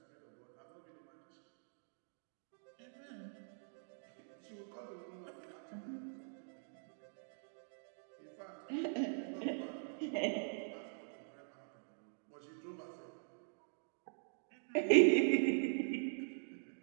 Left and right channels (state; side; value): silent; left; digital silence